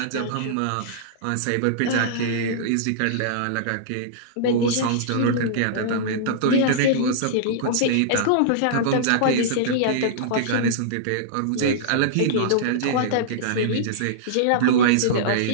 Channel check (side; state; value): both; different; correlation -0.02